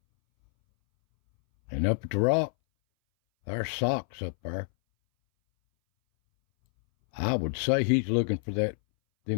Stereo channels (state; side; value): silent; right; 60 dB below the other